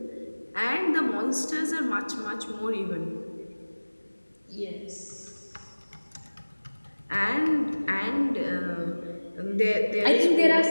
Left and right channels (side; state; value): both; inverted; correlation -1.00